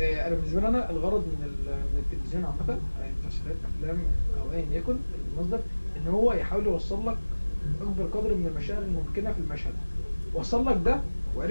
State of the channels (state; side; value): inverted; both; correlation -1.00